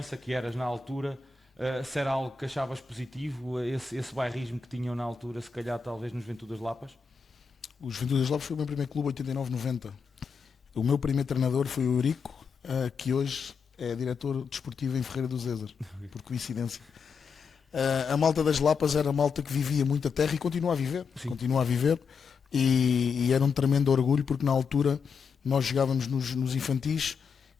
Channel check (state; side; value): quieter; right; 5.6 dB